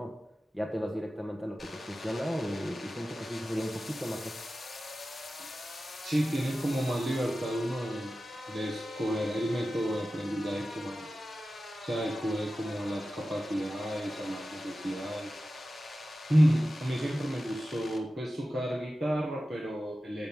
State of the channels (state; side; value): normal; both; correlation 0.94